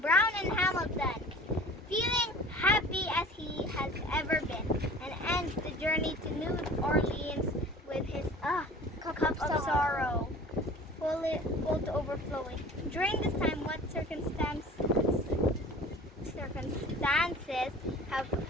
Brown and Hamilton, feeling happy as he has ever been, and ends the journey to New Orleans with his cup of sorrow, full to overflowing. During this time, what circumstances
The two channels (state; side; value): normal; both; correlation 0.43